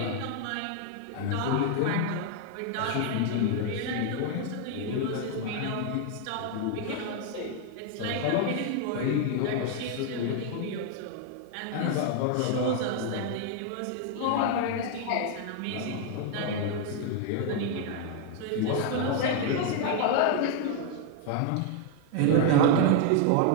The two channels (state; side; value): different; both; correlation 0.00